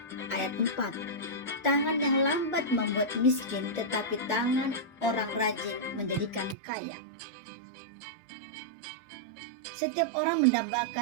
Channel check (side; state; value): left; drops out; at 6.6 s